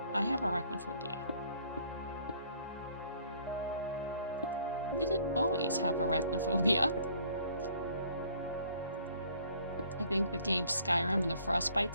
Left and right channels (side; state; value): both; inverted; correlation -0.59